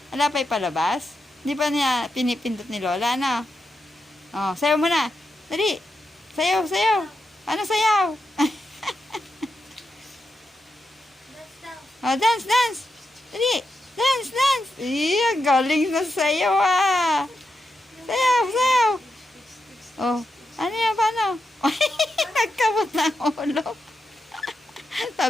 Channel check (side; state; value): both; normal; correlation 0.86